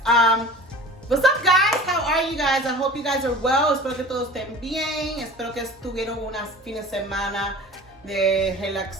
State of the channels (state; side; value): normal; both; correlation 0.40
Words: What's up, guys? How are you guys? I hope you guys are well. Espero que todos estén bien. Espero que estuvieron unas fines de semana de